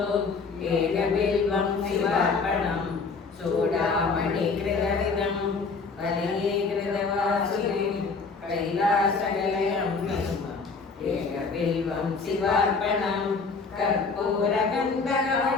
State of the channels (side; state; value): right; quieter; 4.6 dB